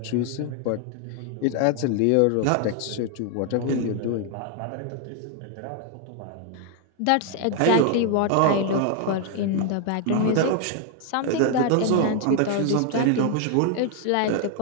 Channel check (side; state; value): both; different; correlation 0.00